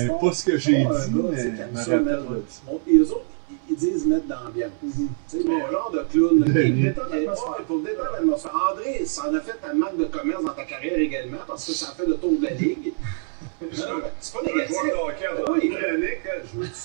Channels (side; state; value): left; silent; digital silence